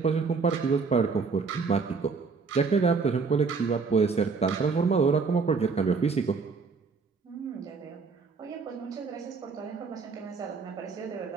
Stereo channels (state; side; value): quieter; left; 4.8 dB